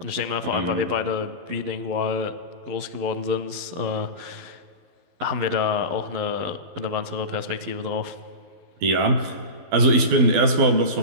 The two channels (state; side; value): late; left; 12 ms